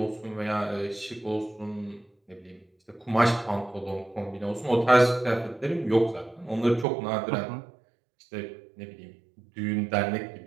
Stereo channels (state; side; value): drops out; left; at 6.9 s